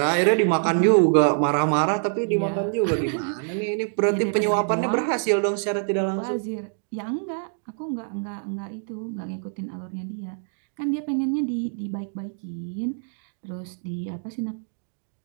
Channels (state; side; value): silent; left; digital silence